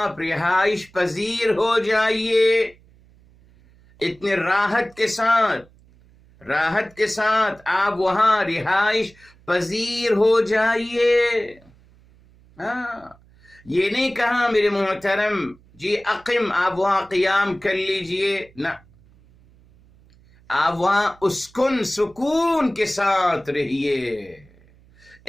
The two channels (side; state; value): right; noise; hum, 28 dB below the sound